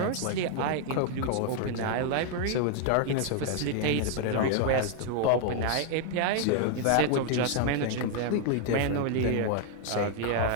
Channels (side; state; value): both; different; correlation 0.00